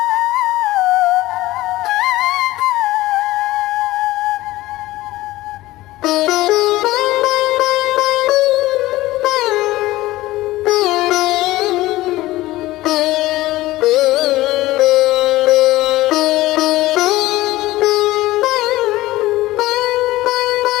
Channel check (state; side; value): quieter; right; 17.5 dB